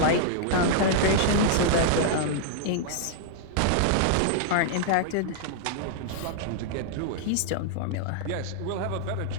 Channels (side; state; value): both; different; correlation -0.01